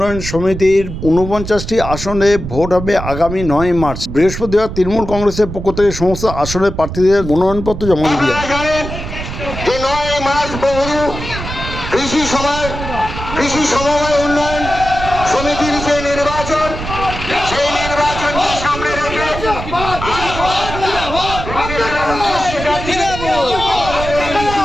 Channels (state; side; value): noise; right; rumble, 8 dB below the sound